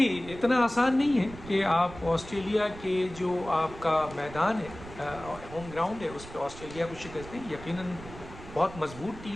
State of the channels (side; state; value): right; noise; rumble, 15 dB below the sound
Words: اتنا آسان نہیں ہے کہ آپ آسٹریلیا کے جو آپ کا میدان ہے، ہوم گراؤنڈ ہے، اس پہ آسٹریلیا کو شکست دیں۔ یقیناً بہت مضبوط